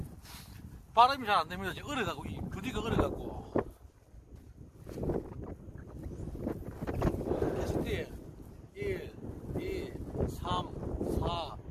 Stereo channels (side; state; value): both; identical; correlation 1.00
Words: 발음이 잘 안 됩니다. 지금 얼어가고, 이 부디가 얼어가고. 캐스팅 1, 2, 3, 4,